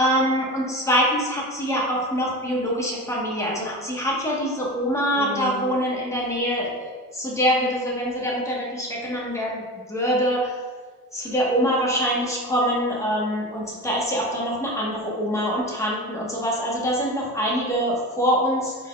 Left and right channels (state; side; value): normal; both; correlation 0.29